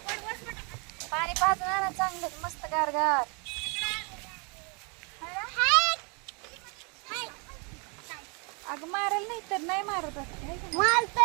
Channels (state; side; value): quieter; left; 33.7 dB